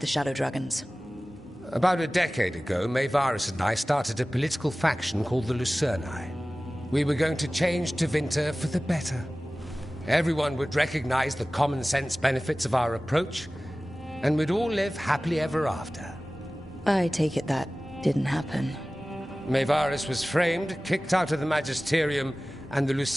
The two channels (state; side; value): normal; both; correlation 0.97